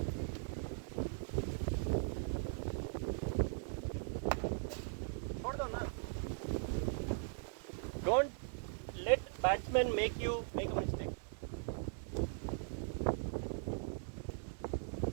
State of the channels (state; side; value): silent; left; digital silence